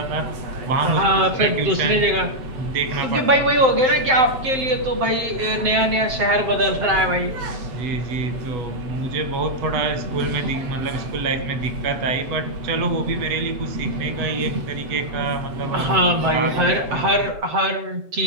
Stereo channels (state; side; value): late; left; 7.7 ms